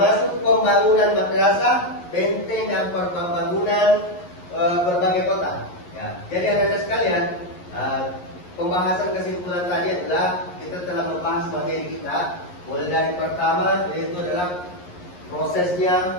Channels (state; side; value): late; right; 11 ms